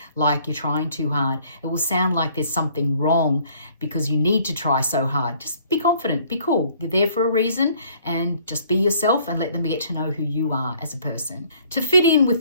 like you're trying too hard. It will sound like there's something wrong because you need to try so hard. Just be confident, be cool. You're there for a reason, and just be yourself and let them get to know who you are as a person. To fit in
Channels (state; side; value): inverted; both; correlation -0.59